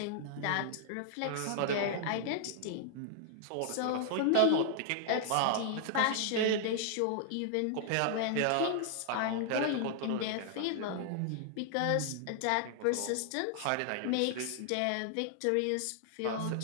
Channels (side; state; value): both; different; correlation -0.01